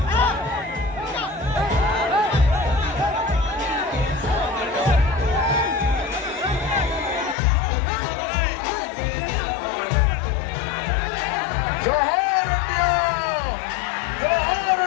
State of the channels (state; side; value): drops out; right; at 7.4 s